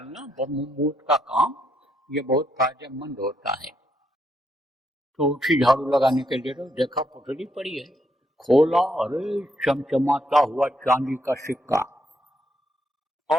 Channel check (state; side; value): normal; both; correlation 0.76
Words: ब्रह्म मुहूर्त का काम, ये बहुत फायदेमंद होता है। तो उठी झाड़ू लगाने के लिए, तो देखा पुटली पड़ी है, खोला, अरे चमचमाता हुआ चांदी का सिक्का,